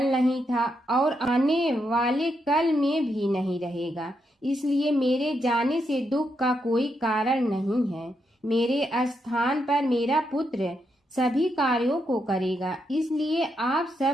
नहीं था और आने वाले कल में भी नहीं रहेगा। इसलिए मेरे जाने से दुख का कोई कारण नहीं है। मेरे स्थान पर मेरा पुत्र सभी कार्यों को करेगा। इसलिए आप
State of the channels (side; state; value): both; normal; correlation 0.81